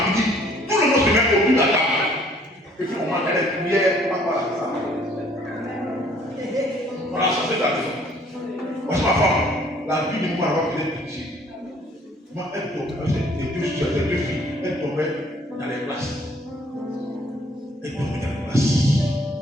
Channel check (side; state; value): both; normal; correlation 0.59